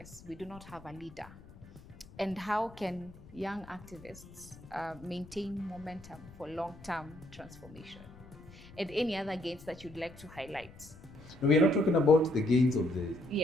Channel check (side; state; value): left; noise; rumble, 19 dB below the sound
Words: we do not have a leader. And how can young activists maintain momentum for long-term transformation? And any other gains that you'd like to highlight? No, we are not talking about the gains of the